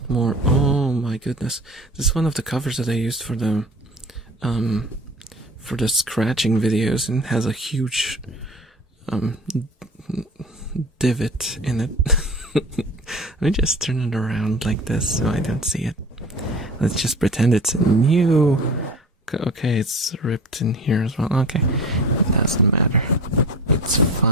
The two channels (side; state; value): both; normal; correlation 0.38